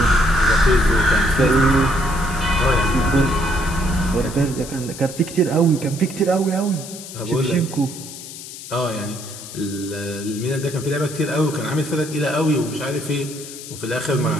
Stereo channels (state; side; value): noise; left; hiss, 13 dB below the sound